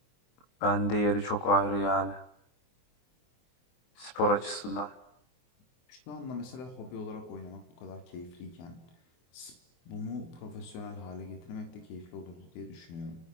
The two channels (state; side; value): late; right; 24 ms